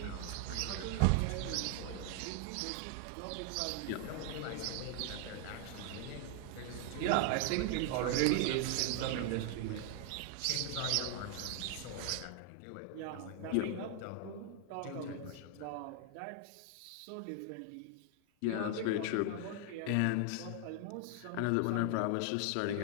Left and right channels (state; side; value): different; both; correlation 0.00